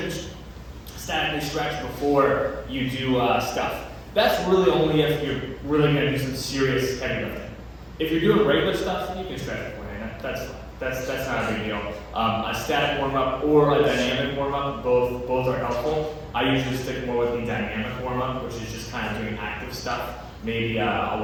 statically stretch before you do stuff, that's really only if you're really going to do some serious heavy lifting. If you're doing regular stuff, you can stretch beforehand. That's fine. That's not a big deal. A static warm up or a dynamic warm up, both are helpful. I usually stick more with the dynamic warm up, which is just kind of doing active stuff. Maybe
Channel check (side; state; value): both; identical; correlation 1.00